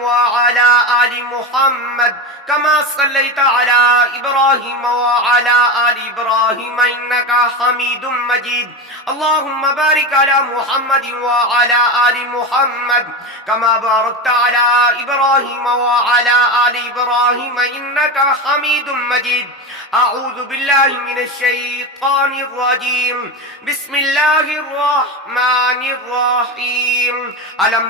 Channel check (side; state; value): both; normal; correlation 0.21